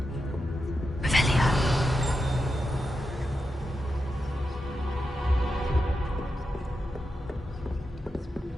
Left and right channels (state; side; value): normal; both; correlation 0.88